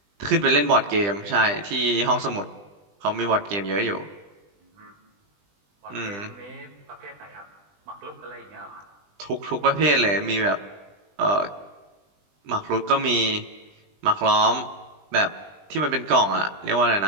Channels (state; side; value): late; left; 20 ms